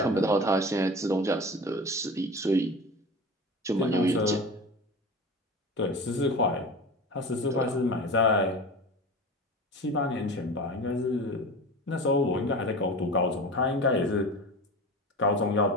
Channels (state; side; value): normal; both; correlation 0.32